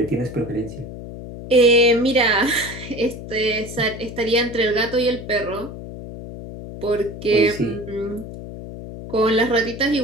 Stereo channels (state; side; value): noise; left; hum, 11 dB below the sound